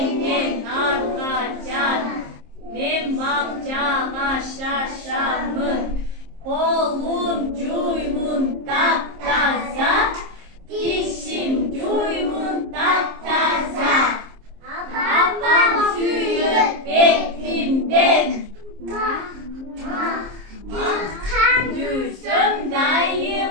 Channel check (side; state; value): left; late; 26 ms